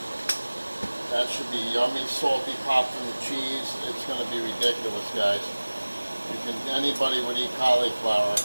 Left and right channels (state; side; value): inverted; both; correlation -1.00